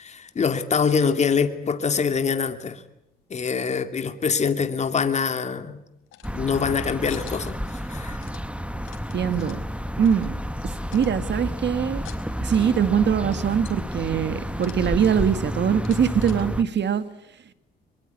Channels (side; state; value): both; normal; correlation 0.50